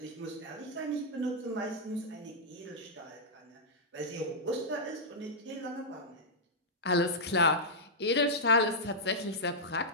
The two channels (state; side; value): normal; both; correlation -0.08